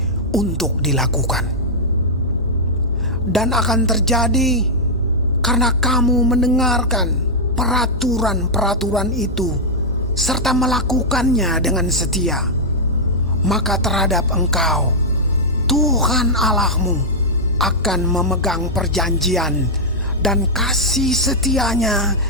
untuk dilakukan. Dan akan terjadi karena kamu mendengarkan peraturan-peraturan itu serta melakukannya dengan setia, maka terhadap engkau Tuhan Allahmu akan memegang perjanjian dan kasih setianya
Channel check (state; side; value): normal; both; correlation -0.06